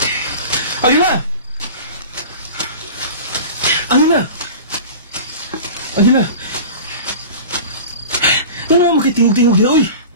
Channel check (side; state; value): both; inverted; correlation -0.35